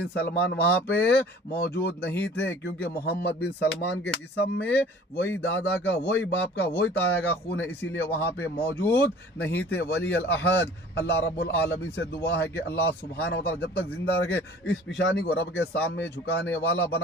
सलमान वहाँ पे मौजूद नहीं थे, क्योंकि मोहम्मद बिन सलमान के जिस्म में वही दादा का, वही बाप का, वही ताया का खून है, इसीलिए वहाँ पे मौजूद नहीं थे वली अल अहद। अल्लाह रब्बुल आलमीन से दुआ है कि अल्लाह सुब्हानहू व तआला जब तक जिंदा रखे, इस पिशानी को रब के सामने झुकाने वाला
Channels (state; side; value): normal; both; correlation 0.48